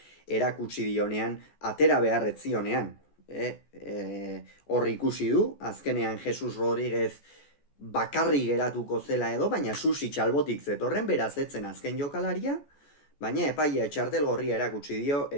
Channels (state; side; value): late; right; 14 ms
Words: erakutsi dionean, atera beharretzionean. Hor ikusi du, azkenean Jesus Rodríguez bakarri geratuko zela edo, baina Susic albotik zetorren beraz etzen azken jokalaria, baina epaia txartelgorria erakutsi dio,